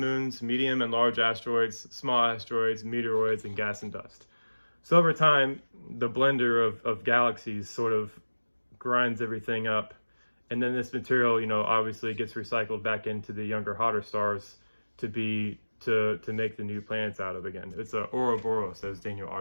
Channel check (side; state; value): both; inverted; correlation -1.00